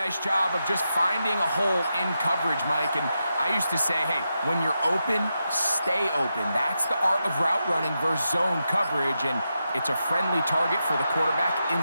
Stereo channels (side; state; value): both; inverted; correlation -0.87